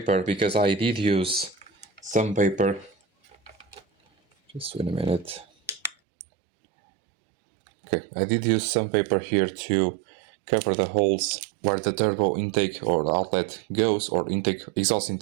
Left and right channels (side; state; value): left; drops out; at 6.0 s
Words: because I did use some paper. Just wait a minute. Okay, I did use some paper here to cover the holes where the turbo intake or outlet goes, or exhaust